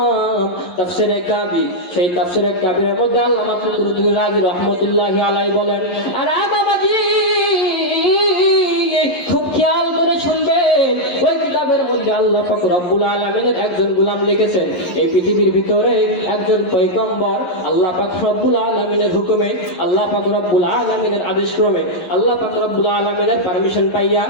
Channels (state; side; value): late; right; 11 ms